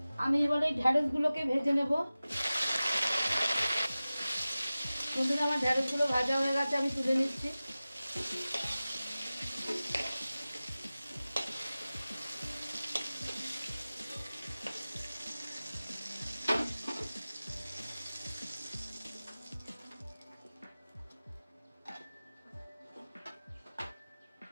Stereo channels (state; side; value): inverted; both; correlation -0.97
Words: আমি এবার এই ঢ্যাঁড়সগুলোকে ভেজে নেব বন্ধুরা। আমার ঢ্যাঁড়সগুলো ভাজা হয়ে গেছে, আমি তুলে নিচ্ছি।